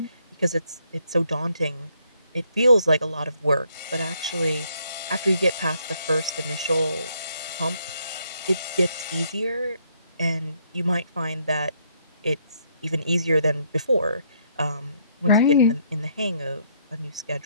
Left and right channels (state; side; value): inverted; both; correlation -0.70